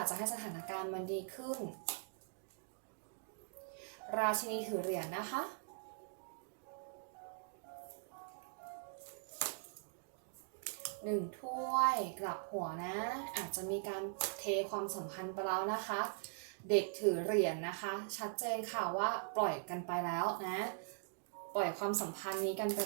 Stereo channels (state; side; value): silent; left; digital silence